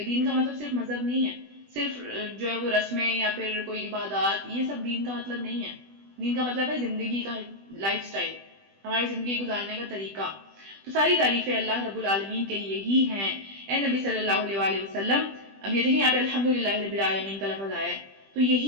دین کا مطلب صرف مذہب نہیں ہے، صرف جو ہے وہ رسمیں یا پھر کوئی عبادات، یہ سب دین کا مطلب نہیں ہے۔ دین کا مطلب ہے زندگی کا لائف سٹائل، ہماری زندگی گزارنے کا طریقہ۔ تو ساری تعریفیں اللہ رب العالمین کے لیے ہی ہیں۔ اے نبی صلی اللہ علیہ وآلہ وسلم، اب یہ دیکھیں یہاں پہ الحمدللہ رب العالمین کا لفظ آیا ہے، تو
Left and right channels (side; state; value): left; late; 20 ms